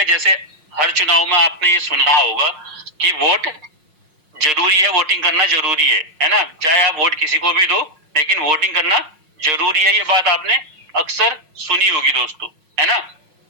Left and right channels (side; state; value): left; late; 5.5 ms